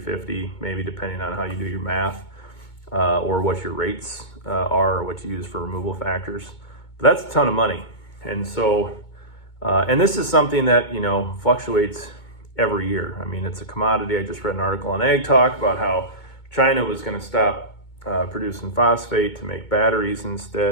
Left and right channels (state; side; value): late; right; 2.2 ms